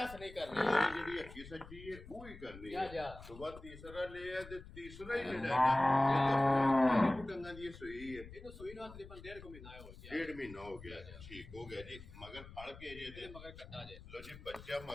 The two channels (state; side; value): noise; left; rumble, 16 dB below the sound